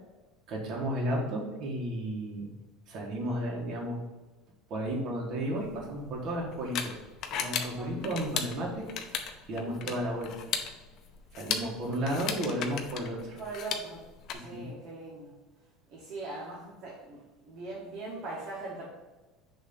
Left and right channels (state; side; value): normal; both; correlation 0.42